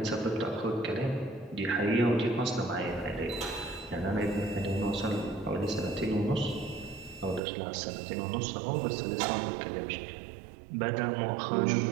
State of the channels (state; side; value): drops out; left; at 7.4 s